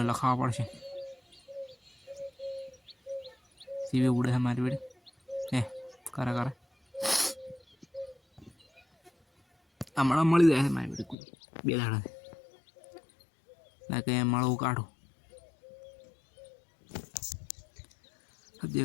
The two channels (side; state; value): right; drops out; at 11.2 s